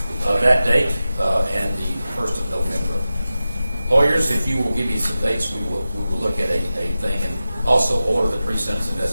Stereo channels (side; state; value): both; inverted; correlation -0.93